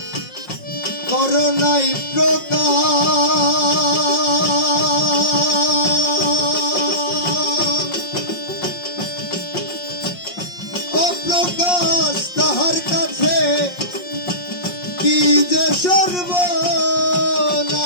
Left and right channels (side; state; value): right; late; 5.6 ms